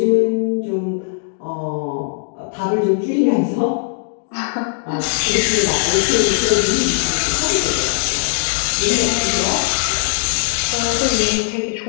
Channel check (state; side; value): silent; right; digital silence